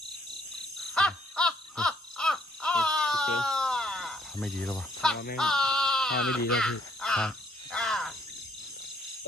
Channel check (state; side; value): normal; both; correlation 0.66